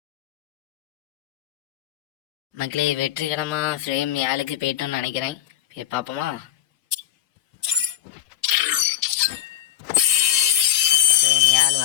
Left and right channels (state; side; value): quieter; right; 12.3 dB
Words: மக்களே வெற்றிகரமா ஃப்ரேம் 7க்கு போயிட்டோம்னு நினைக்கிறேன். போய் பார்ப்போமா? ஃப்ரேம் 7